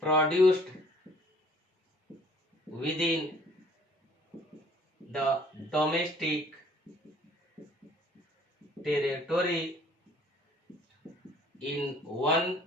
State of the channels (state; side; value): normal; both; correlation 0.56